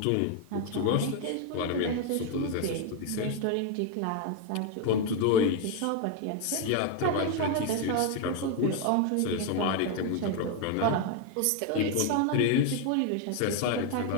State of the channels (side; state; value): both; different; correlation 0.01